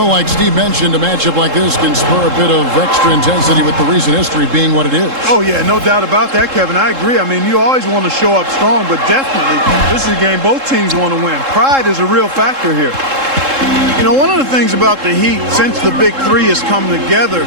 like Steve mentioned, a matchup like this can spur a bit of extra intensity with the recent history being what it is. Oh, yeah, no doubt about that, Kevin. I agree. I mean, you always want to show up strong, but definitely this is a game both teams want to win. Pride is a real factor here. You know, one of the things about the Heat since the Big Three has come together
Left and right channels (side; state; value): left; late; 3.7 ms